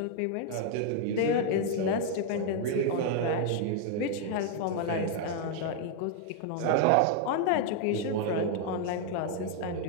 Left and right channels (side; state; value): both; different; correlation 0.00